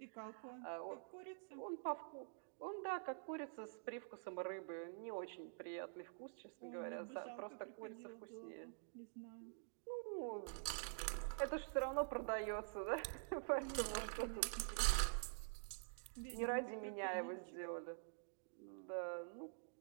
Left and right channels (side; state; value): left; silent; digital silence